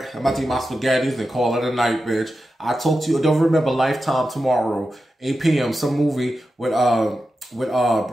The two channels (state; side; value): normal; both; correlation 0.91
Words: I'm about to eat my spaghettis and call it a night, bitch. I talk to you. Don't remember Lifetime tomorrow, 8 p.m. Some movie with the